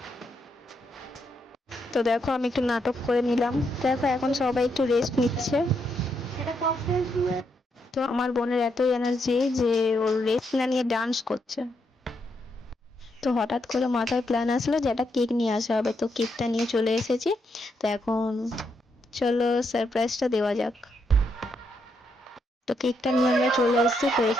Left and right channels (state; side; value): normal; both; correlation 0.79